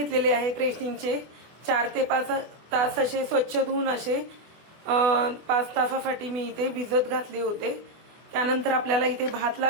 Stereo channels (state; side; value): late; left; 24 ms